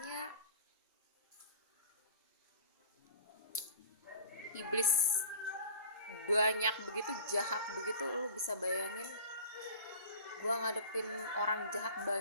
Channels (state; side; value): inverted; both; correlation -0.42